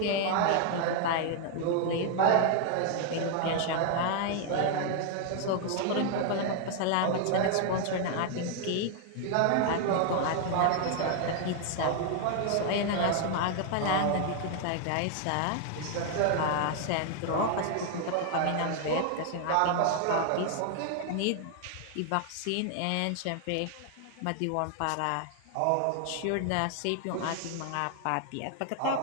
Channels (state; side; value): different; both; correlation 0.00